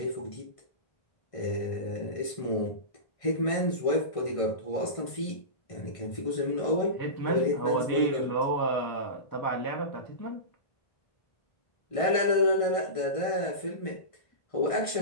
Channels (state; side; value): late; right; 1.5 ms